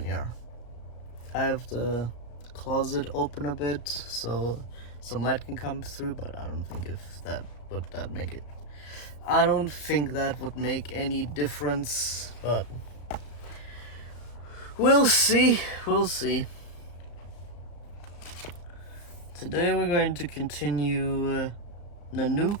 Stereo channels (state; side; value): late; right; 34 ms